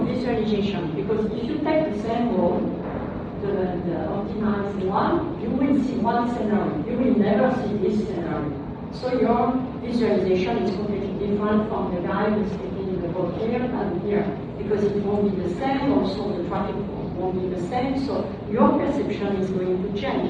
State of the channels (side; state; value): both; identical; correlation 1.00